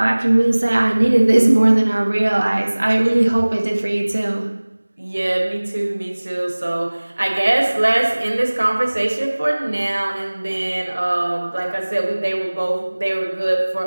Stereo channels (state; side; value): inverted; both; correlation -1.00